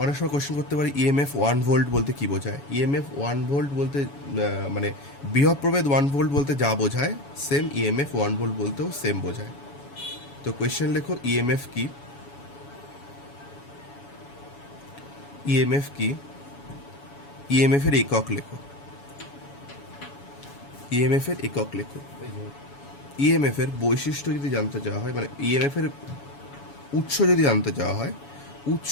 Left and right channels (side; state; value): right; late; 7.1 ms